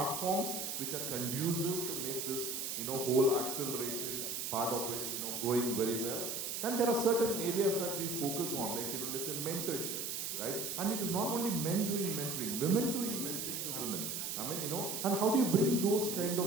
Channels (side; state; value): right; noise; hiss, 3 dB below the sound